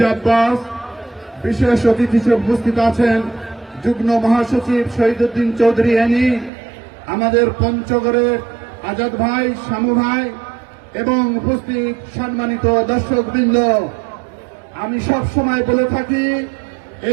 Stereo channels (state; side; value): drops out; left; at 6.5 s